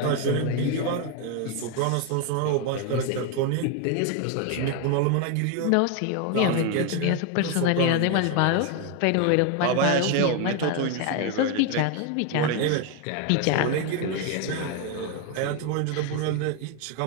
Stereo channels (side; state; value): both; different; correlation 0.01